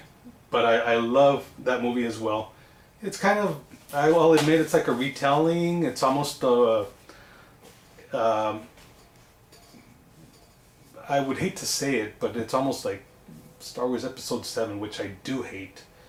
but I love that movie as well. It's kind of, I will admit, it's like a retelling. It's almost I would hate to say it, but it's almost like Star Wars Episode 7, which I do hate.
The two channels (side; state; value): both; identical; correlation 1.00